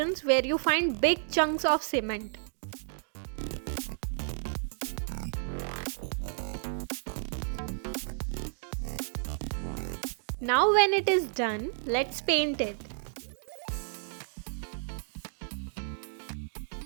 where you find big chunks of cement. Now when it is done, let's paint it.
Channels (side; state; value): left; silent; digital silence